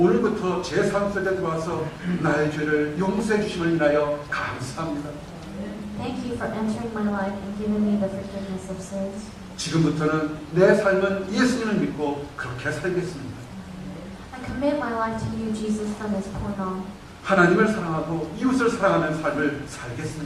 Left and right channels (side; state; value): both; identical; correlation 1.00